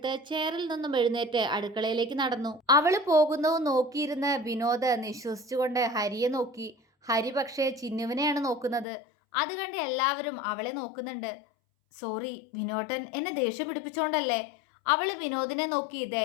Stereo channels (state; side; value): drops out; right; at 8.8 s